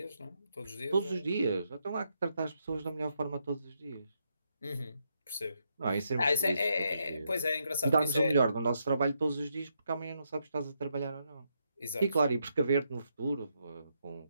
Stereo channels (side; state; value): both; inverted; correlation -0.79